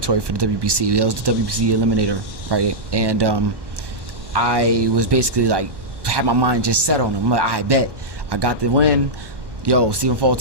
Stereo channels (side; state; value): left; late; 1.1 ms